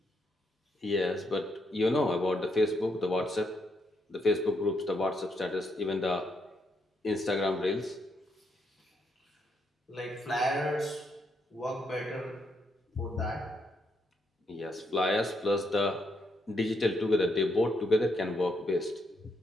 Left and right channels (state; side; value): normal; both; correlation 0.77